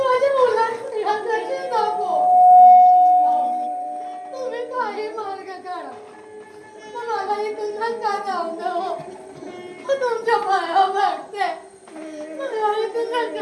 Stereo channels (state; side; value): identical; both; correlation 1.00